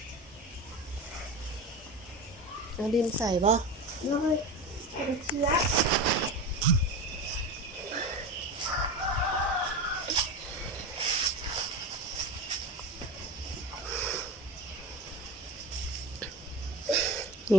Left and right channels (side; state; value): both; normal; correlation 0.28